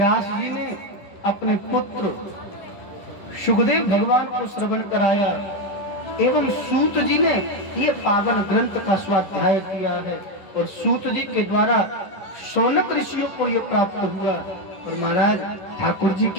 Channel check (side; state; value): right; late; 11 ms